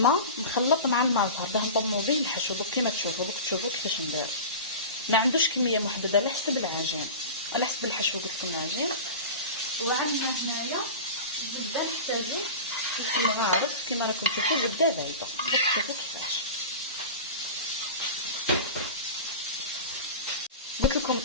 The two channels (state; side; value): inverted; both; correlation -0.31